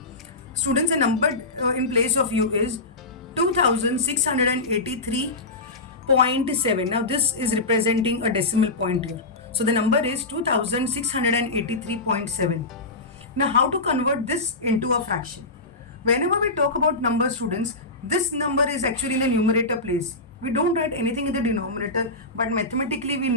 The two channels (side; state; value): right; quieter; 3.1 dB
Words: Students, the number in place of you is 2683.7. Now this is representing a decimal point here. So the number is 2683.7. Now how to convert this into a fraction? Whenever we talk about numbers, students, this number is actually in the numerator place. We don't write anything in the denominator, but mathematically we